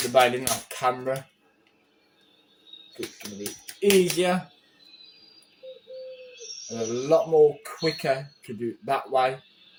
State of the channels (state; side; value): identical; both; correlation 1.00